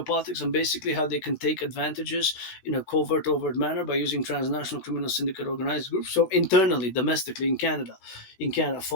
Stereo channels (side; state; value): right; late; 17 ms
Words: and basically how they can take advantages in a overt manner by using transnational criminal syndicate organized groups. So internally, domestically in Canada,